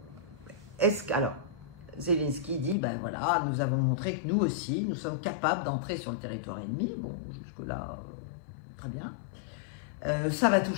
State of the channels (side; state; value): right; drops out; at 2.8 s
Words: Alors, Zelensky dit, ben voilà, nous avons montré que nous aussi, nous sommes capables d'entrer sur le territoire ennemi. Bon, jusque-là, très bien. Ça va tout